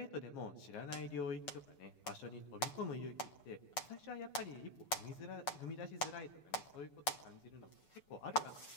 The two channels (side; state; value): right; late; 6.9 ms